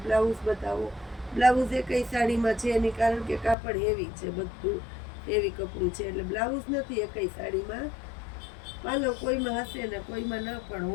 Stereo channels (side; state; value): right; drops out; at 3.6 s